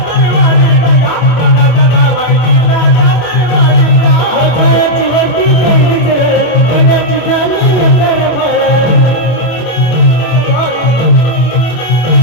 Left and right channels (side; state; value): right; late; 25 ms